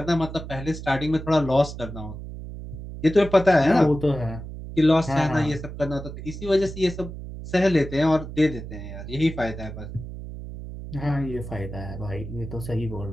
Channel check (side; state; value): right; noise; hum, 10 dB below the sound